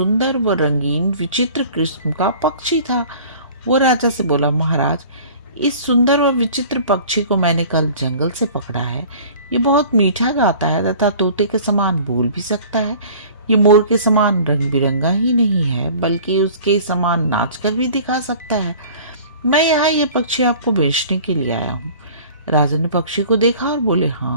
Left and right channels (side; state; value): both; inverted; correlation -0.46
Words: व रंगीन विचित्र किस्म का पक्षी था। वो राजा से बोला, महाराज, इस सुंदर व विचित्र पक्षी को मैंने कल जंगल से पकड़ा है। ये बहुत मीठा गाता है तथा तोते के समान बोल भी सकता है। ये मोर के समान रंग बिरंगा ही नहीं है बल्कि उसके समान नाचकर भी दिखा सकता है। मैं यहाँ ये पक्षी आपको बेचने के लिए आया हूँ। राजा ने पक्षी को देखा और बोले,